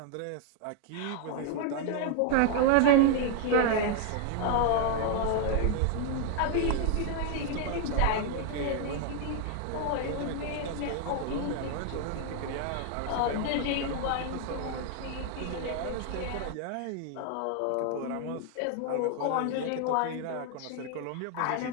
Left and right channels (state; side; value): different; both; correlation 0.00